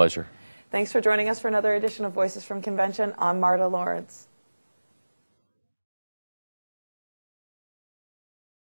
Thanks for joining us for another edition of Voices from Convention. I'm Marta Lawrence.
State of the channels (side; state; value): both; inverted; correlation -1.00